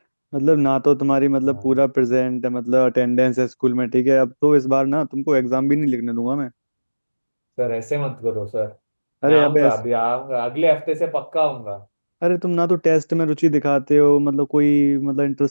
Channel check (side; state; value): both; inverted; correlation -1.00